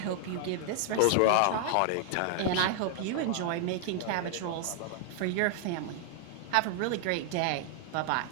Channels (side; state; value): both; different; correlation 0.00